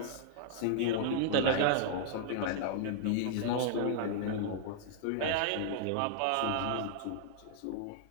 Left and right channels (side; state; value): both; different; correlation -0.01